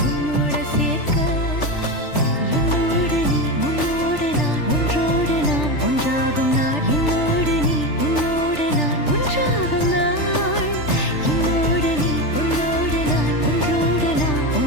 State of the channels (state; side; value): late; right; 3.4 ms